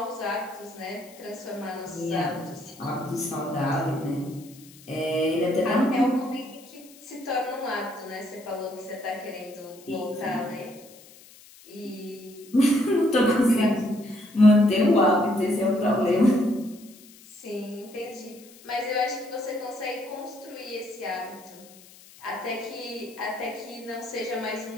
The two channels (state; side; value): noise; left; hiss, 22 dB below the sound